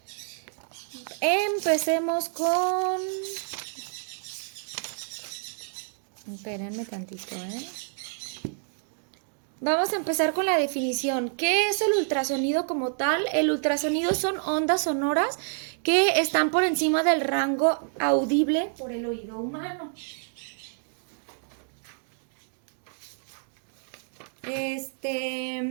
Empecemos con... Espérenme tantito, Vamos a empezar con la definición. ¿Qué es el ultrasonido como tal? El ultrasonido son ondas sonoras que están por encima del rango audible por el oído humano.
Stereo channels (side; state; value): left; silent; digital silence